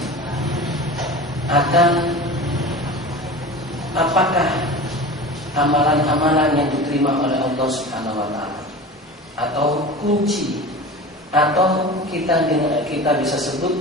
akan apakah amalan-amalan yang diterima oleh Allah Subhanahu wa taala, atau kunci, atau kita bisa sebut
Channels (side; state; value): both; normal; correlation 0.34